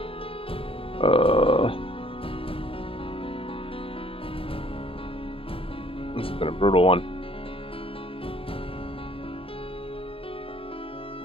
This has been a brutal one.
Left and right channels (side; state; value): right; late; 0.27 ms